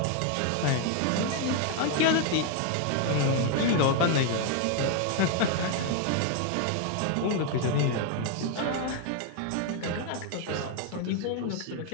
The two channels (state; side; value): different; both; correlation 0.00